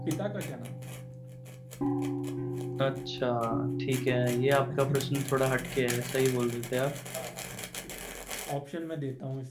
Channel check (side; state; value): both; identical; correlation 1.00